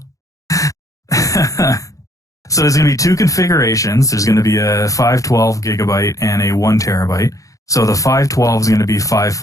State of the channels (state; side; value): late; right; 0.16 ms